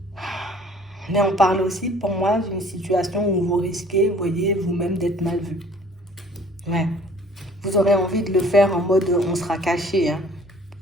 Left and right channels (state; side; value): normal; both; correlation 0.53